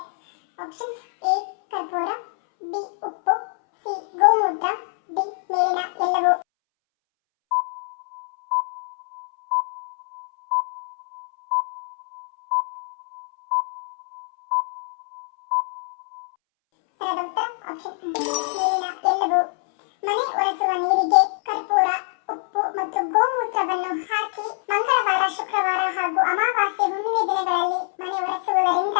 ಆಪ್ಷನ್ಸ್: ಎ ಕರ್ಪೂರ, ಬಿ ಉಪ್ಪು, ಸಿ ಗೋಮೂತ್ರ, ಡಿ ಮೇಲಿನ ಎಲ್ಲವೂ. ಸರಿಯಾದ ಉತ್ತರ ಆಪ್ಷನ್ ಡಿ ಮೇಲಿನ ಎಲ್ಲವೂ. ಮನೆ ಒರೆಸುವ ನೀರಿಗೆ ಕರ್ಪೂರ, ಉಪ್ಪು ಮತ್ತು ಗೋಮೂತ್ರವನ್ನು ಹಾಕಿ ಮಂಗಳವಾರ, ಶುಕ್ರವಾರ ಹಾಗೂ ಅಮಾವಾಸ್ಯೆ, ಹುಣ್ಣಿಮೆ ದಿನಗಳಲ್ಲಿ ಮನೆ ಒರೆಸುವುದರಿಂದ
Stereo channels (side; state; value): right; silent; 63 dB below the other